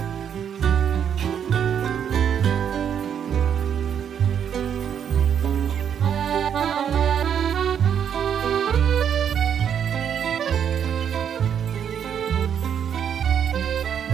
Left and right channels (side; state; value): left; quieter; 8.5 dB